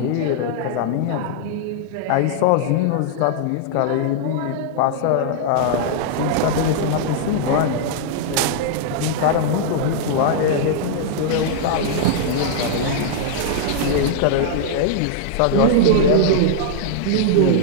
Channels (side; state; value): both; different; correlation -0.01